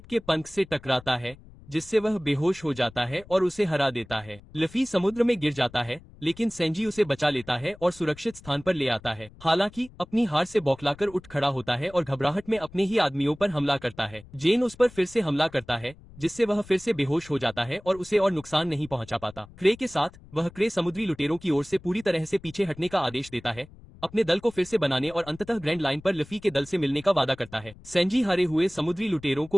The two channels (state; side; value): noise; left; rumble, 22 dB below the sound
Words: के पंख से टकराता है, जिससे वह बेहोश हो जाता है और उसे हरा देता है। लफी समुद्र में गिर जाता है, लेकिन सैंजी उसे बचा लेता है और सुरक्षित स्थान पर ले आता है। हालांकि अपनी हार से बौखलाकर उठ खड़ा होता है और घबराहट में अपने ही आदमियों पर हमला करता है। जेन उस पर फिर से हमला करता है, जिससे वह फिर से बेहोश हो जाता है और उसे और नुकसान नहीं पहुंचा पाता। क्रे के साथ वह क्रे समुद्री लुटेरों की ओर से पूरी तरह से पीछे हटने का आदेश देता है, अपने दल को फिर से बनाने और अंततः ग्रैंड लाइन पर लफी के दल से मिलने का वादा करता है। सैंजी हारे हुए समुद्री लुटेरों को